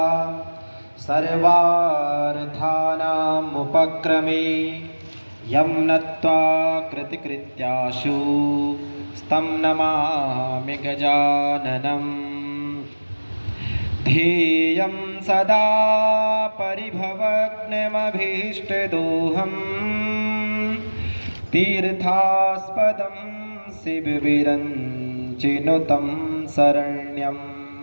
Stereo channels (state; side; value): inverted; both; correlation -1.00